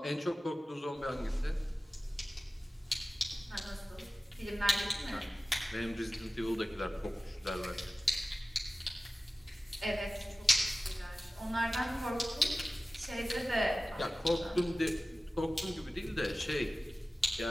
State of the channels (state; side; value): normal; both; correlation 0.96